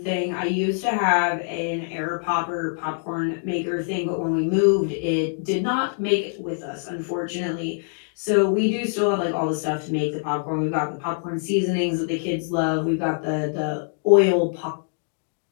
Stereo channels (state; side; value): silent; right; digital silence